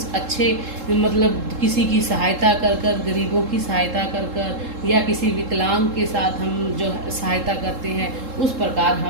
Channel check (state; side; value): late; left; 3.7 ms